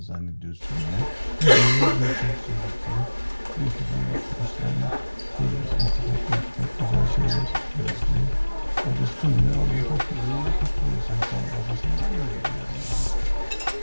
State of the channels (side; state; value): both; inverted; correlation -1.00